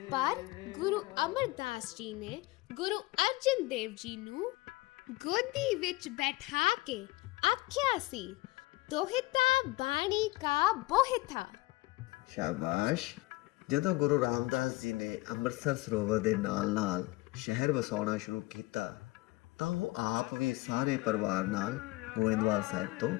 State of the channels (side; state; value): right; quieter; 21.5 dB